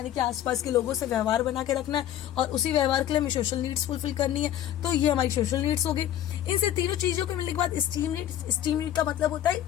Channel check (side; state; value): right; quieter; 11.7 dB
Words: कि आसपास के लोगों से व्यवहार बना के रखना है, और उसी व्यवहार के लिए हमें सोशल नीड्स फुलफिल करनी है। तो ये हमारी सोशल नीड्स हो गई। इनसे तीनों चीजों को मिलने के बाद स्टीम नीड का मतलब होता